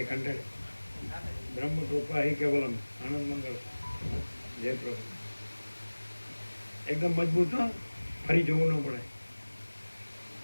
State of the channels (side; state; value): both; inverted; correlation -1.00